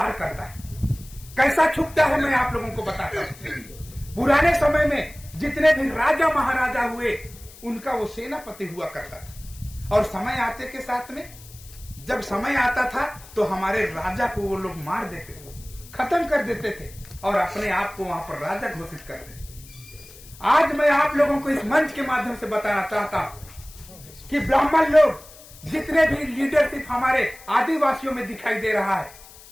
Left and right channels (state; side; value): noise; left; hiss, 20 dB below the sound